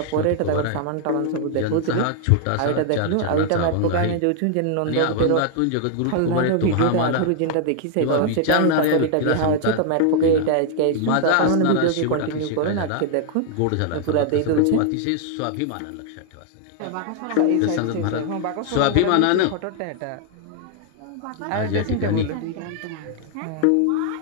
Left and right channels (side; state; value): both; different; correlation 0.00